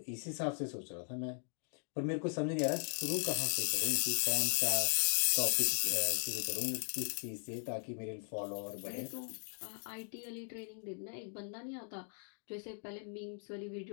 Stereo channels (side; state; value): right; silent; 52 dB below the other